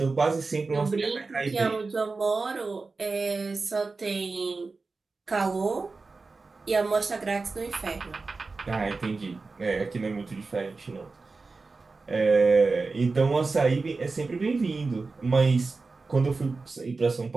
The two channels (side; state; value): left; quieter; 4.0 dB